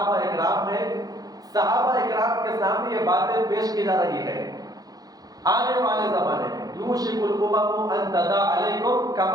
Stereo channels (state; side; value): late; left; 0.18 ms